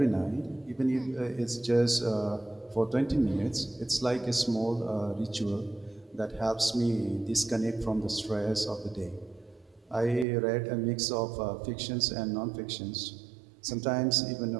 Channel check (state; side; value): drops out; left; at 10.2 s